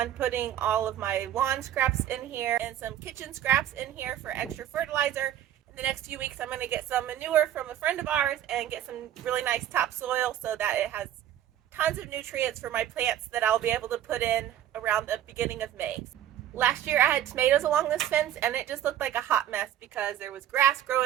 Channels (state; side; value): quieter; left; 11.4 dB